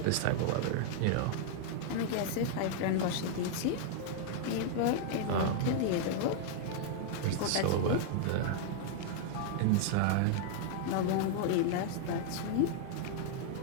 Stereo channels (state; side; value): different; both; correlation 0.00